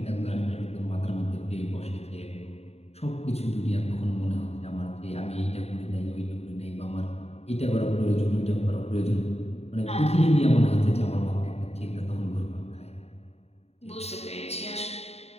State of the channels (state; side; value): late; right; 0.30 ms